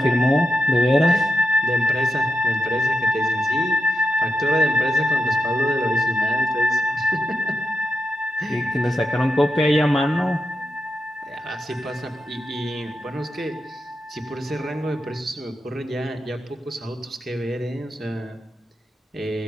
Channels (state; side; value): normal; both; correlation 0.86